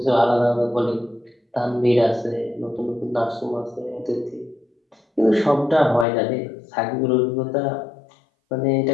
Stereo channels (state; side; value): drops out; right; at 6.1 s